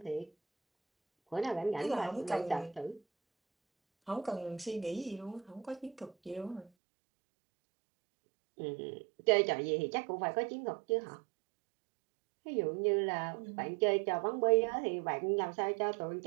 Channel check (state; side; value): drops out; left; at 6.7 s